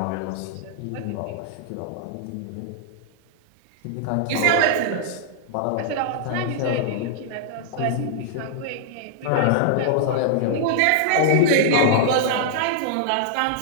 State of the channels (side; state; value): both; different; correlation -0.01